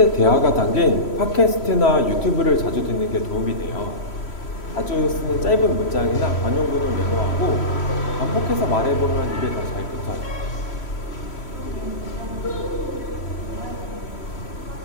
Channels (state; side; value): late; right; 3.1 ms